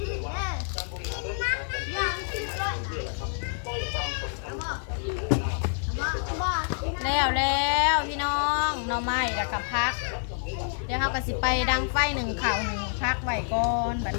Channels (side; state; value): right; silent; digital silence